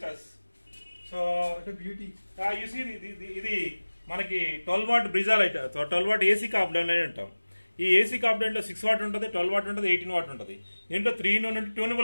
us. So what a beauty. You see ఇది మనకి 12 watt Brezza light, 12 watt AC component అని అంటాం. ఈ ఏసీ కాంపోనెంట్ లో 6 what ఉంటుంది, 12 what ఉంటుంది, 18 what ఉంటుంది. దీంట్లో 3 in 1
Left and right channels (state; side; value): inverted; both; correlation -1.00